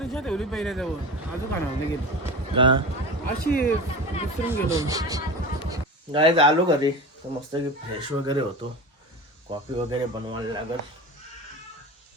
रिक्षा ठेवली पहिले जवळ. अजून खाणार गेली का अशी विसरून गेलो. गाईज आलो घरी तर मस्त की फ्रेश वगैरे होतो. कॉफी वगैरे बनवायला लागल.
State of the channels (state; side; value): normal; both; correlation 0.30